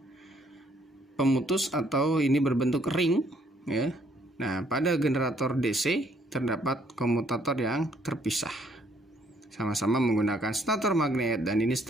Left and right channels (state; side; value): normal; both; correlation 0.66